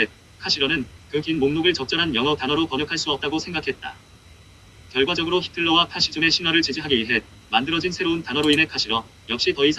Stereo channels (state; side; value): identical; both; correlation 1.00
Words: 카시러는 그 긴 목록을 적절한 영어 단어로 번역할 수 없다고 생각했다. 결과적으로 히틀러와 파시즘의 신화를 지지하기 위해 만들어진 새로운 단어로 인해 카시러 역시 더